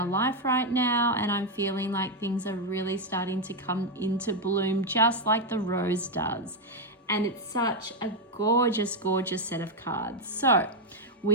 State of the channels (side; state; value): both; normal; correlation 0.03